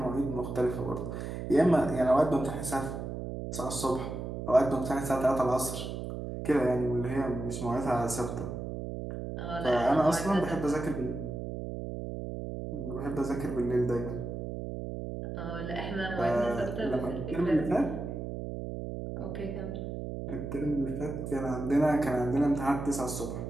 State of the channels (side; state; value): right; noise; hum, 6 dB below the sound